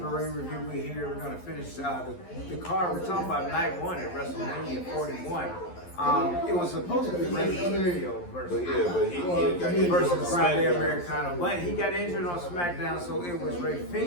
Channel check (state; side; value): late; right; 11 ms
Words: ring review. We're here. We're going to finish the card. We're talking about night one at Wrestlemania 41. It was supposed to be Rey Mysterio versus he got injured on versus Friday SmackDown. Americana, but he got injured on SmackDown, so it was Rey